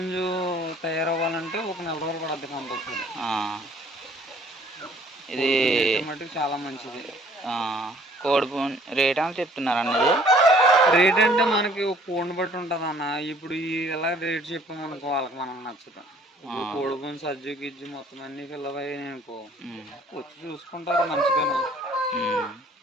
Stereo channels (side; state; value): both; normal; correlation 0.57